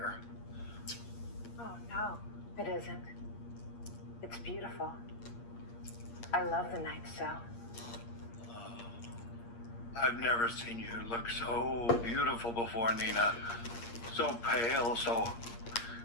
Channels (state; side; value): late; right; 8.6 ms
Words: Oh, no, it isn't. It's beautiful. I love the night so. I've never seen you look so beautiful before, Nina. So pale, so